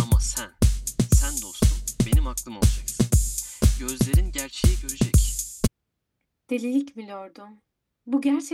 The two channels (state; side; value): identical; both; correlation 1.00